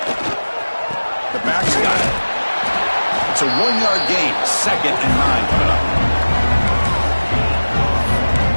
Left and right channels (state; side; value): inverted; both; correlation -1.00